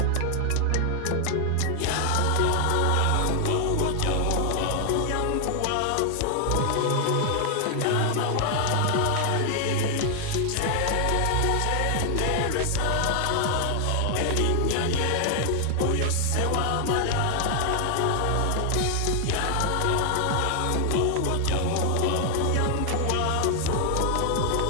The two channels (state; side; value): different; both; correlation 0.00